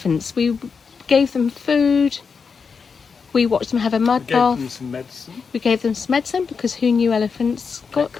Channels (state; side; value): quieter; right; 5.5 dB